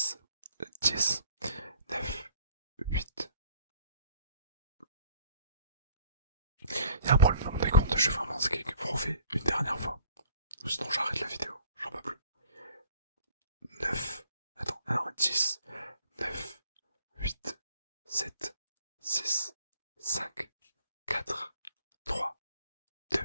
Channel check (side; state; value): both; inverted; correlation -0.55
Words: 10, 9, 8. Il y a un problème dans mon décompte, je suis vraiment skeg. Vous refait une dernière fois. Sinon j'arrête la vidéo, j'en peux plus. 9, attends, non, 10, 9, 8, 7, 6, 5, 4, 3, 2,